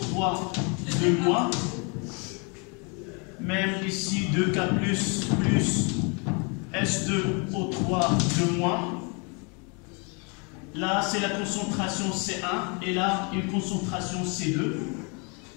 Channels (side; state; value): right; quieter; 33.9 dB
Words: de moins. Même ici 2K plus S2O3 de moins. Là, c'est la concentration C1 et là, une concentration C2.